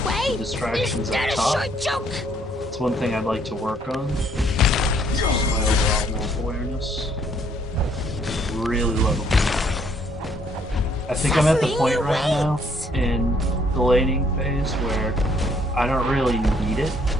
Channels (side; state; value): both; normal; correlation 0.66